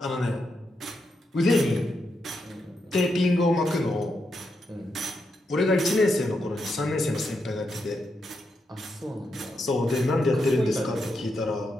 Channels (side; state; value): both; normal; correlation 0.83